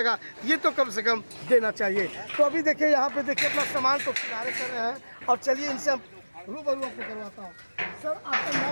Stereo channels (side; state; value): both; inverted; correlation -1.00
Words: ये तो कम से कम देना चाहिए। तो अभी देखिए यहाँ पे देखिए अपना सामान को किनारे कर रहे हैं, और चलिए इनसे हम रूबरू आपको करवाता हूँ। सर आपका